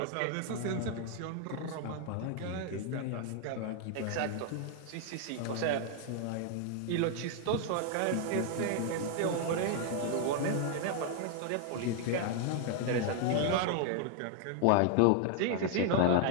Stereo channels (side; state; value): both; different; correlation 0.00